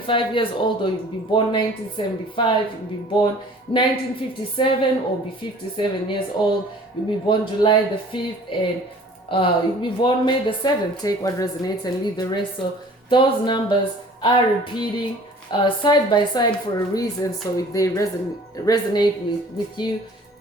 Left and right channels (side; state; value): both; normal; correlation 0.49